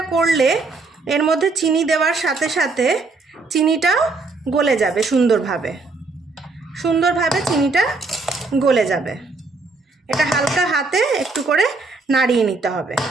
করলে, এর মধ্যে চিনি দেওয়ার সাথে সাথে চিনিটাও গলে যাবে, সুন্দরভাবে চিনিটা গলে যাবে। এটা হালকা হাতে একটু করে নাড়িয়ে নিতে হবে,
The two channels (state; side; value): quieter; left; 3.8 dB